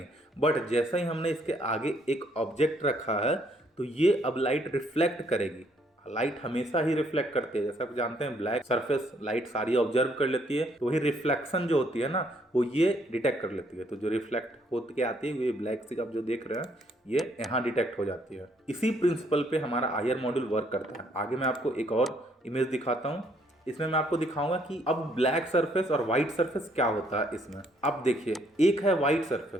बट जैसा ही हमने इसके आगे एक ऑब्जेक्ट रखा है तो ये अब लाइट रिफ्लेक्ट करेगी। लाइट हमेशा ही रिफ्लेक्ट करती है, जैसा आप जानते हैं ब्लैक सरफेस लाइट सारी ऑब्जर्व कर लेती है, तो वही रिफ्लेक्शन जो होती है ना वो ये डिटेक्ट कर लेती है। तो जो रिफ्लेक्ट होती के आती है ये ब्लैक से आप जो देख रहे हैं ये यहाँ डिटेक्ट हो जाती है। इसी प्रिंसिपल पे हमारा IR मॉड्यूल वर्क करता है। आगे मैं आपको एक और इमेज दिखाता हूँ, इसमें मैं आपको दिखाऊंगा कि अब ब्लैक सरफेस और व्हाइट सरफेस क्या होता है इसमें। अब देखिए, एक है व्हाइट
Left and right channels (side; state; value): both; normal; correlation 0.68